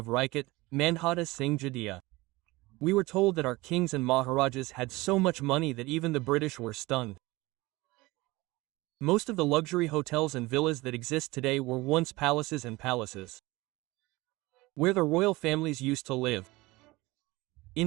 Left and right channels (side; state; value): left; quieter; 21.1 dB